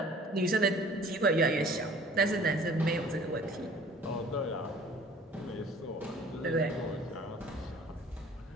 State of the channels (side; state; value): both; normal; correlation 0.50